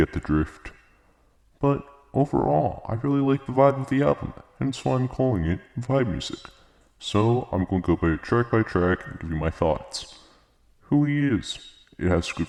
the drift. But overall, I really like the vibe of the album, hence why I'm calling it vibe music. So I'm going to go by track and give you my thoughts. Who he is. It has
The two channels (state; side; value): identical; both; correlation 1.00